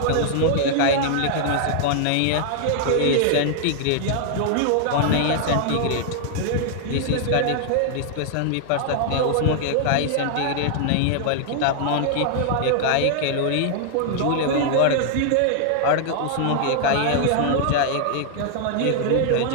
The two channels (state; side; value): different; both; correlation -0.01